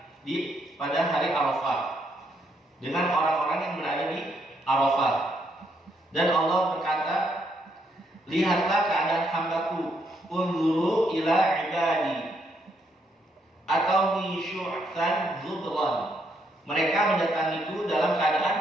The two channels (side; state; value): both; normal; correlation 0.75